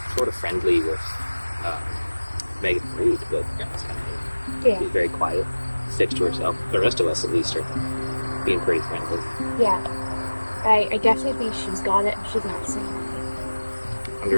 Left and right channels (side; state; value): both; inverted; correlation -1.00